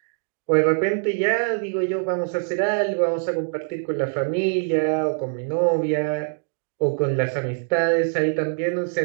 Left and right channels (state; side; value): silent; left; digital silence